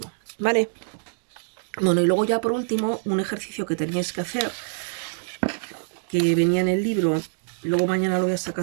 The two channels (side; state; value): left; silent; digital silence